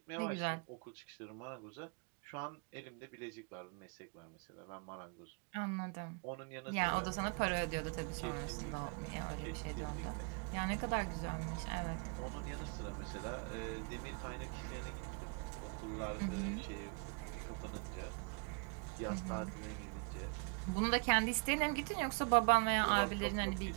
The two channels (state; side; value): quieter; left; 36.2 dB